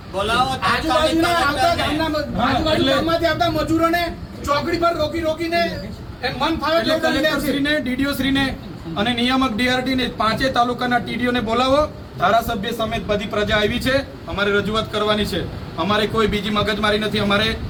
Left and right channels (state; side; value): identical; both; correlation 1.00